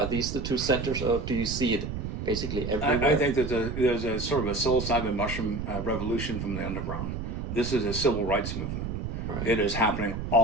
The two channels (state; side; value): noise; right; rumble, 5 dB below the sound